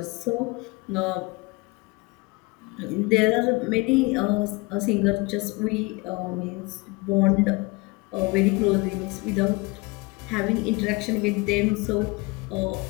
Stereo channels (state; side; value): quieter; right; 25.3 dB